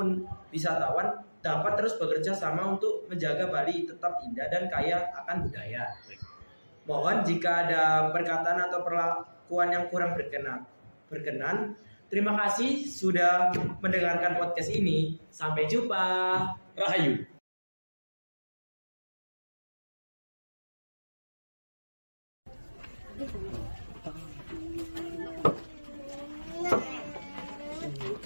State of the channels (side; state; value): both; inverted; correlation -1.00